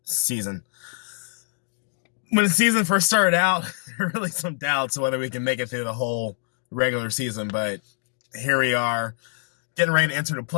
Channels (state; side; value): silent; right; digital silence